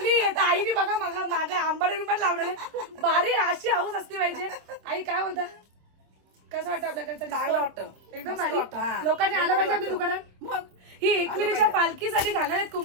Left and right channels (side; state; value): left; late; 26 ms